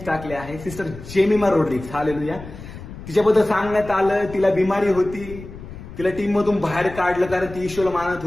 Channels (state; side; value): noise; left; rumble, 14 dB below the sound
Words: टाकले आहे. Sister Jemimah Rodrigues, hallelujah. तिच्याबद्दल सांगण्यात आलं, तिला बिमारी होती, तिला टीम मधून बाहेर काढलं कारण ती ईश्वरला मानत